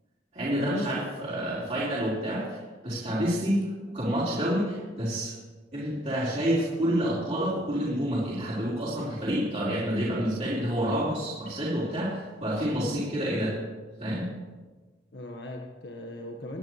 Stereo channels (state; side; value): normal; both; correlation 0.62